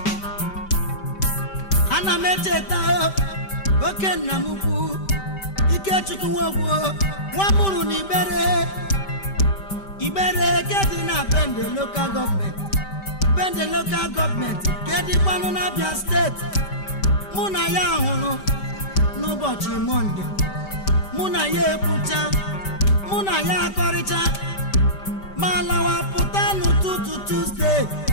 Mecheta oke nna m ukwu Ikechukwu Ogbo nwa mụrụ n'Ibere ke dị na Bende local government ke dịkwanụ na Abia steeti mụ na ya hụrụ n'ụbọchị Mọnde mụ na ya ekwucha mụ na ya akọrịcha ma lawa pụta n'ụtụtụ Tuesday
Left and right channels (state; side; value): late; right; 5.1 ms